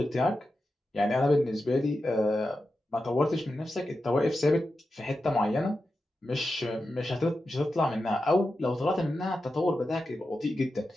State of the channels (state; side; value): normal; both; correlation 0.90